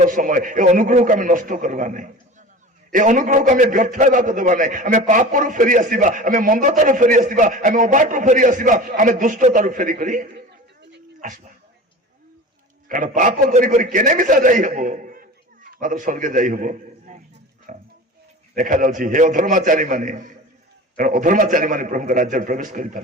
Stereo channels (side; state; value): both; normal; correlation 0.36